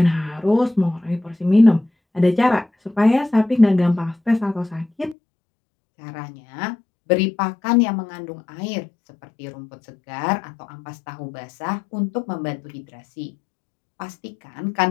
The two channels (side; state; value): right; drops out; at 5.2 s